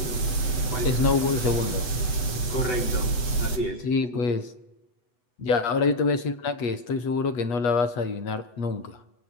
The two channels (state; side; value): late; right; 7.7 ms